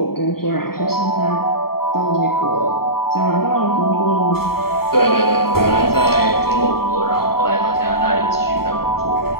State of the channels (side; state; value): right; late; 0.94 ms